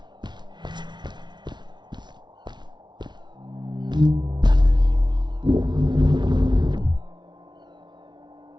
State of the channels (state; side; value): late; left; 0.21 ms